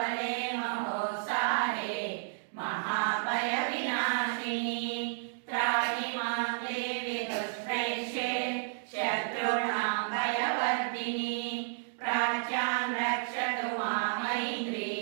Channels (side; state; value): left; silent; digital silence